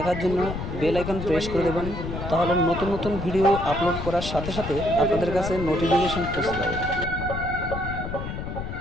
জন্য বেল আইকন প্রেস করে দেবেন, তাহলে নতুন নতুন ভিডিও আপলোড করার সাথে সাথে আপনাদের কাছে নোটিফিকেশন পৌঁছে যাবে।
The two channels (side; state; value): left; noise; rumble, 6 dB below the sound